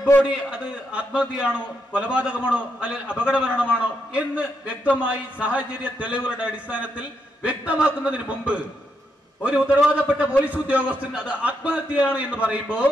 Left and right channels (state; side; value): normal; both; correlation 0.81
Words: ബോഡി അത് ആത്മഹത്യയാണോ കൊലപാതകമാണോ അല്ലെങ്കിൽ അപകടമരണമാണോ എന്ന് വ്യക്തമായി സാഹചര്യ തെളിവുകളുടെ അടിസ്ഥാനത്തിൽ വ്യക്തമാക്കുന്നതിന് മുമ്പ് ഒരു ഉത്തരവാദപ്പെട്ട പോലീസ് ഉദ്യോഗസ്ഥൻ അത് ആത്മഹത്യയാണ് എന്ന് പറയുമ്പോൾ